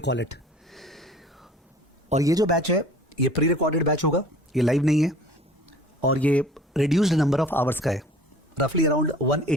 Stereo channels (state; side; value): normal; both; correlation 0.48